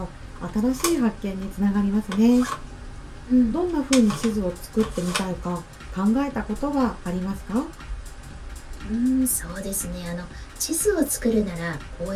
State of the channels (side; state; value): both; identical; correlation 1.00